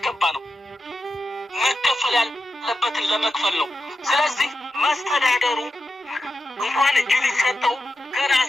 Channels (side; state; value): both; normal; correlation 0.89